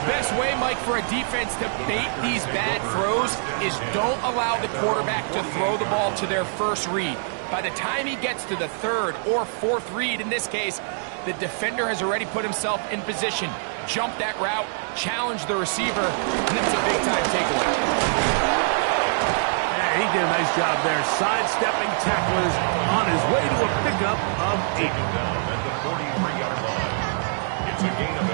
best way, Mike, for a defense to bait these bad throws is don't allow the quarterback to throw the ball to their first read. By the time he gets to the 3rd or 4th read, in this case, the defender has already put himself in position, jump that route, challenge the receiver, and it's a big-time takeaway. Yeah, he did a nice job there, sidestepping tacklers on his way to a pickup of 8. Down at the 43-yard line. It's a gain of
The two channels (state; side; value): silent; left; digital silence